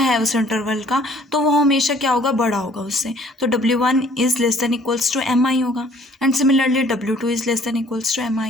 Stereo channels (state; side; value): normal; both; correlation 0.58